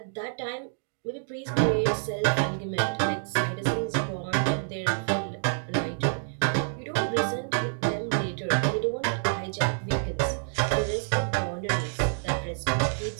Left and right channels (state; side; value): silent; left; digital silence